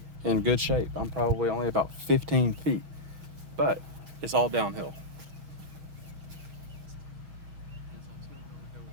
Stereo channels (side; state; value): left; late; 6.3 ms